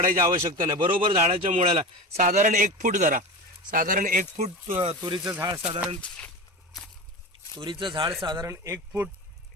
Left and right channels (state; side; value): normal; both; correlation 0.27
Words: आवश्यकता नाही. बरोबर झाडाच्या मुळाला साधारण 1 फूट धरा, साधारण 1 फूट तुरीचं झाड साधारण 1 फूट